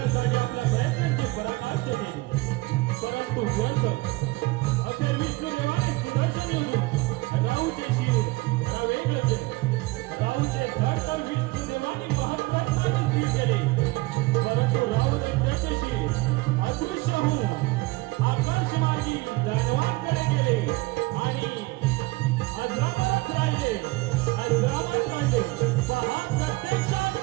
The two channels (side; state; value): left; quieter; 22.1 dB